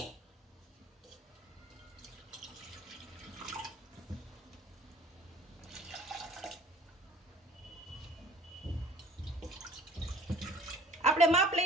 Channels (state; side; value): normal; both; correlation 0.50